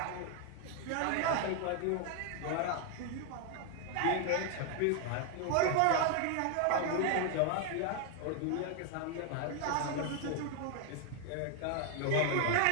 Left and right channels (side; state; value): both; different; correlation 0.00